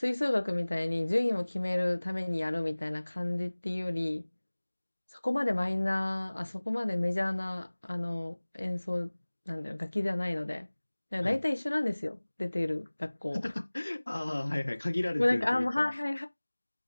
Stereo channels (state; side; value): inverted; both; correlation -1.00